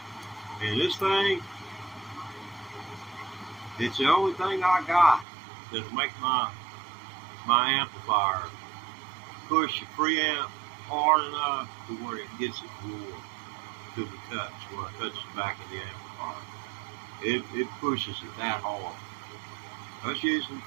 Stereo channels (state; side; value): drops out; left; at 5.2 s